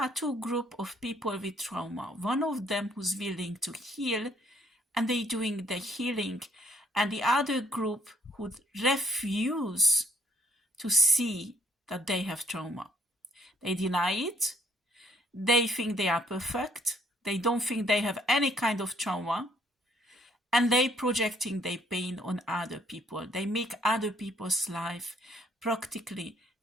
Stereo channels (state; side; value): normal; both; correlation 0.67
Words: two groups of people with trauma. One of them who's willing to heal and they doing the healing, and the other group who refuse to see that they have trauma. They deny it. They think they are perfect. They don't think they have any kind of trauma. And they projecting their pain on other people. They make other people's life practically